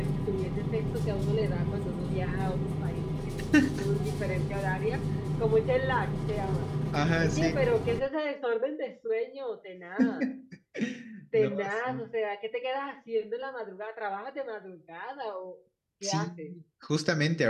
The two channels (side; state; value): both; identical; correlation 1.00